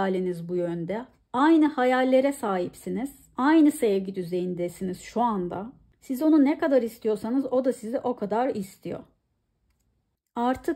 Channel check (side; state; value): both; identical; correlation 1.00